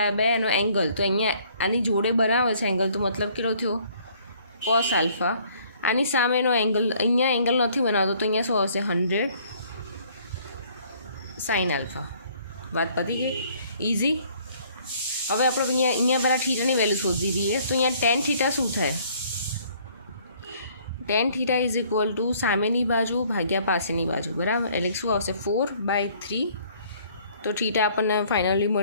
બાય એનો એંગલ. તો અહીંયા આની જોડે બનાવે છે એંગલ, તો મતલબ કેટલો થયો કોસ આલ્ફા. આની સામેનો એંગલ, અહીંયા એંગલ નથી બનાવતો, તો અહીંયા શું આવશે 100 સાઇન આલ્ફા. વાત પતી ગઈ, ઇઝી. હવે આપણે અહીંયા પહેલાં થીટાની વેલ્યુ શોધી દઈએ. તો અહીંયા ટેન થીટા શું થાય, ten theta is equal two સામેની બાજુ ભાગ્યા પાસેની બાજુ, બરાબર. એટલે શું આવશે 4/3. તો થીટા આપણને ફાઇનલી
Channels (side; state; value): both; inverted; correlation -0.60